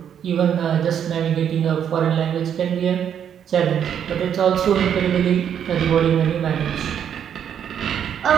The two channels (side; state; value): left; quieter; 8.8 dB